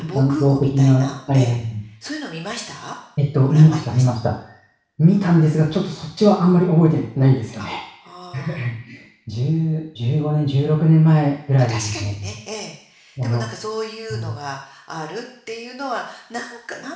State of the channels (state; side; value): identical; both; correlation 1.00